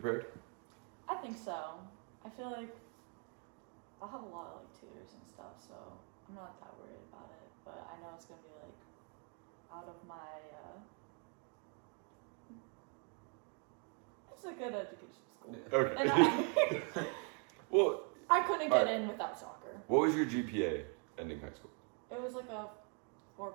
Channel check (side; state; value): left; quieter; 39.2 dB